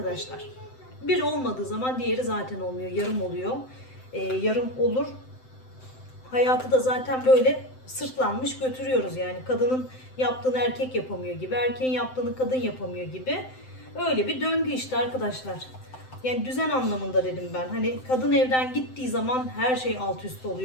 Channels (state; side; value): late; right; 7.8 ms